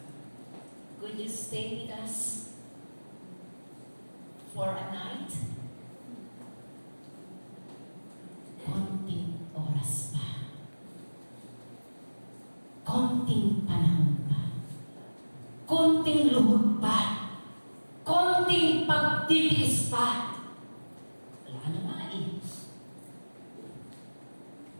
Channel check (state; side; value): inverted; both; correlation -1.00